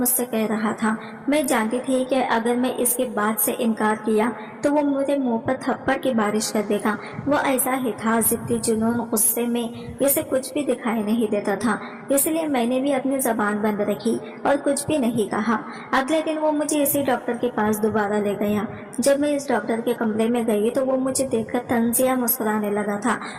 कह रहा था, मैं जानती थी कि अगर मैं इसके बात से इनकार किया तो वो मुझे मुंह पर थप्पड़ की बारिश कर देगा। वो ऐसा ही था, जिद्दी, जुनून, गुस्से में इसे कुछ भी दिखाई नहीं देता था। इसलिए मैंने भी अपनी जबान बंद रखी और कुछ भी नहीं कहा। अगले दिन वो मुझे इसी डॉक्टर के पास दोबारा ले गया। जब मैं इस डॉक्टर के कमरे में गई तो वो मुझे देखकर तंजिया मुस्कुराने लगा था।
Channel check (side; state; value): both; identical; correlation 1.00